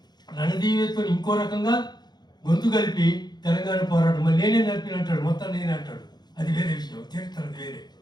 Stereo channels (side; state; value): right; late; 0.20 ms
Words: రణదీవేతో ఇంకో రకంగా గొంతు కలిపి తెలంగాణ పోరాటం మళ్ళీ నేనే నడిపినంటాడు, మొత్తం నేనే అంటాడు. అది వేరే విషయం, చరిత్ర వేరే.